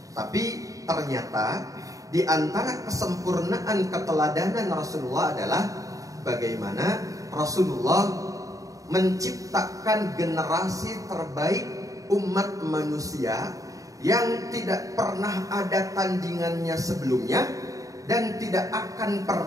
Tapi ternyata di antara kesempurnaan keteladanan Rasulullah adalah bagaimana Rasulullah menciptakan generasi terbaik umat manusia yang tidak pernah ada tandingannya sebelumnya dan tidak akan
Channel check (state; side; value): late; left; 0.16 ms